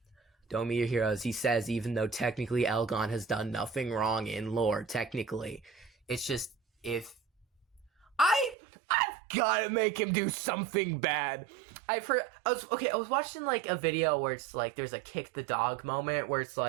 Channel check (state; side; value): drops out; left; at 8.6 s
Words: don't be your heroes, he says, even though technically Elgon has done nothing wrong in lore, technically. It's just, if... I've gotta make him do something bad. I was watching, like, a video where it's like, there's a kick the dog moment, where it's